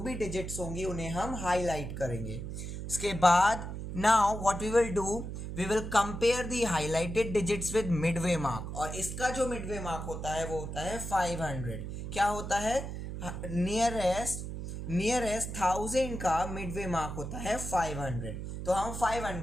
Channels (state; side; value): noise; right; hum, 6 dB below the sound